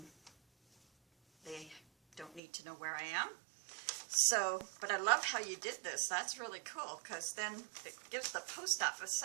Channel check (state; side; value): drops out; left; at 2.4 s